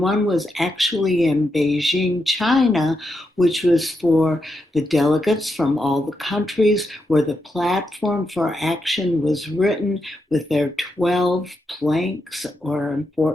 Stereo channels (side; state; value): both; normal; correlation 0.84